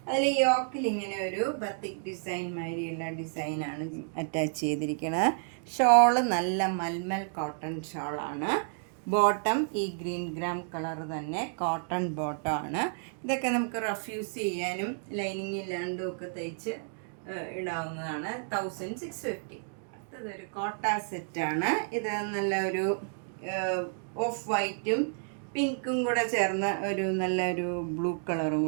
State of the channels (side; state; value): left; silent; digital silence